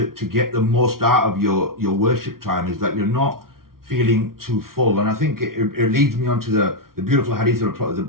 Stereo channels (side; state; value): left; late; 0.93 ms